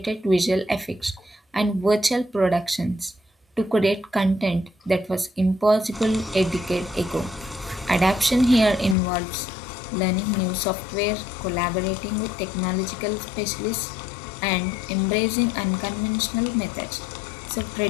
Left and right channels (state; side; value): drops out; right; at 9.0 s